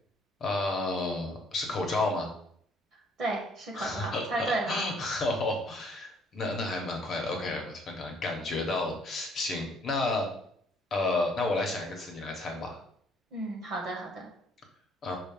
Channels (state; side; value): normal; both; correlation 0.63